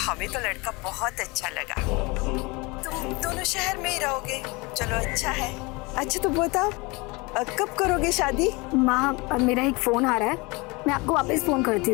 तो लड़का बहुत अच्छा लगा। तुम दोनों शहर में ही रहोगे, चलो अच्छा है। अच्छा तो बताओ कब करोगे शादी? माँ, अब मेरा एक फोन आ रहा है, मैं आपको वापस फोन करती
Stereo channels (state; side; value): quieter; right; 26.0 dB